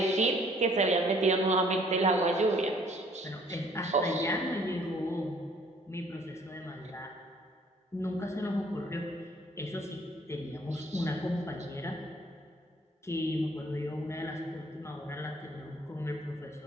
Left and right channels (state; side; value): normal; both; correlation 0.59